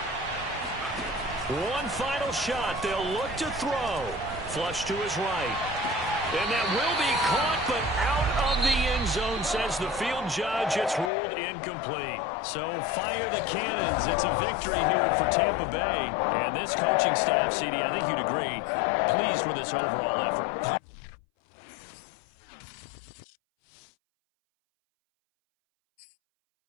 One final shot. They'll look to throw. Flush to his right. And that will be caught, but out of the end zone, says the field judge. It's ruled incomplete. So fire the cannons. It's a victory here for Tampa Bay. And this coaching staff, CD, I think you'd agree, pleased with this overall effort.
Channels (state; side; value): drops out; right; at 11.1 s